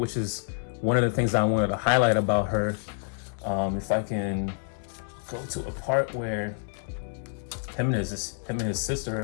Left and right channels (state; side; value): silent; right; digital silence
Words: is one of the things I wanted to highlight about her. If I can go to a part where him and his